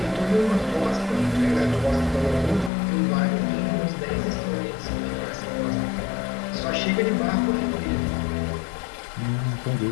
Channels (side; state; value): right; drops out; at 2.7 s